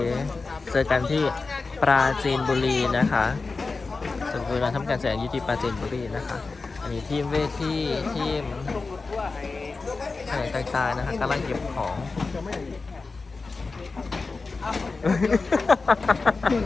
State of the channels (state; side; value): quieter; right; 4.0 dB